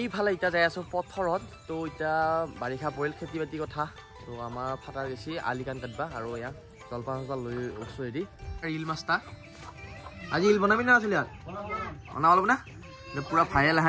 ইটা যাই আছো পথৰত তো ইটা বাৰিষা পৰিল খেতি বাতি কথা তো আমাৰ ফাটাৰ গেছি আলিকান কাটবা আৰু ইয়া জলপান লৈ ওছো এদি ৰিল মাস্তা আজি ৰিল বনাবি না আছিল ইয়াত বনাব লব না পুৰা ভাইৰেল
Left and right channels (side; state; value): both; identical; correlation 1.00